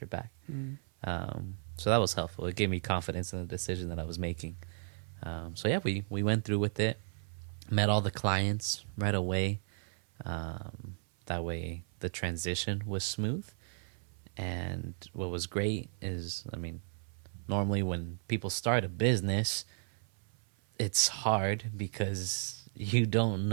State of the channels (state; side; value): silent; left; 55 dB below the other